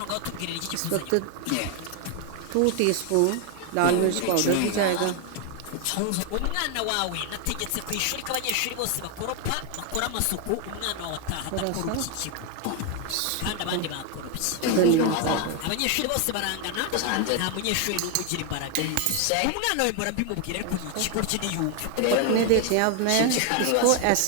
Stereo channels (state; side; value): different; both; correlation 0.01